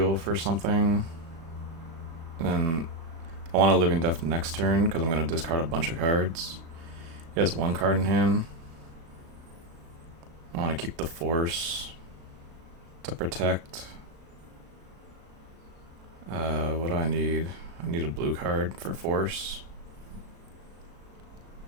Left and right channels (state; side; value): late; left; 36 ms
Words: for something. And then I want a Living Death next turn because I'm going to discard a bunch of cards. He has one card in hand. I want to keep the Force to protect. What do I need? I need a blue card for Force.